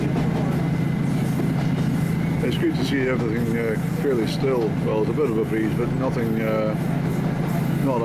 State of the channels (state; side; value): identical; both; correlation 1.00